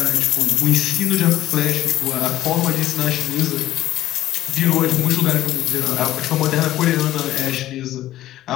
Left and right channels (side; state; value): right; quieter; 14.2 dB